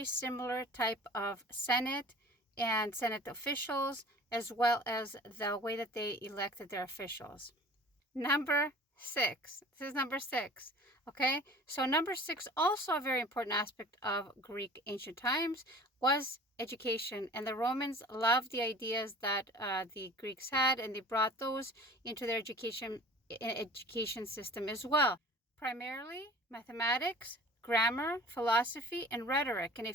similar type of Senate and Senate officials, as well as the way that they elected their officials. Number six. This is number six. Okay, so number six, also a very important aspect of Greek ancient times, was education. And the Romans loved the ideas that the Greeks had, and they brought those into their education system as well. Primarily mathematics, grammar, philosophy, and rhetoric. And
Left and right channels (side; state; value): both; normal; correlation 0.44